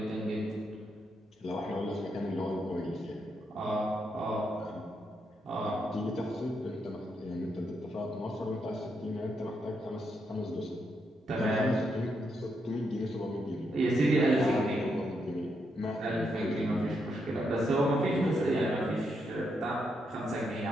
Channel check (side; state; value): both; normal; correlation 0.80